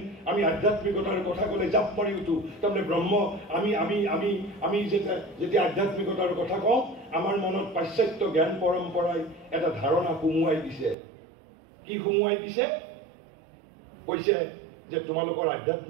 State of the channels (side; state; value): left; drops out; at 11.0 s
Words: আমি আধ্যাত্মিকতাৰ কথা ক'লে জাপ মাৰি উঠো তাৰমানে ব্ৰহ্ম আমি যেতিয়া আধ্যাত্মিকতাৰ কথা কওঁ আমাৰ মনত পাশ্চাত্য জ্ঞান পৰম্পৰাই এটা ধাৰণা সুমুৱাই দিছে কি সুমুৱাই দিছে কৈছে যে তোমালোকৰ